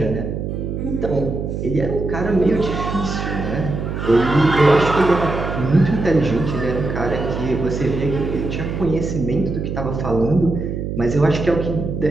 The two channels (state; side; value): noise; right; hum, 4 dB below the sound